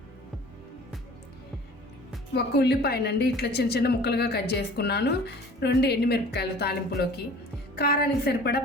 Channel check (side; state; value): both; normal; correlation 0.46